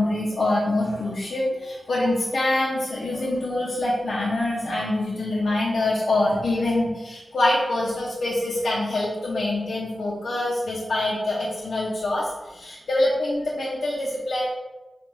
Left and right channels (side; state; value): both; normal; correlation 0.92